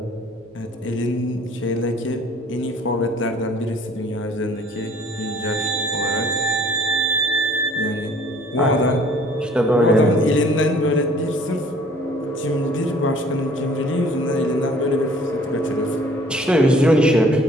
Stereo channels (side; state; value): both; normal; correlation 0.54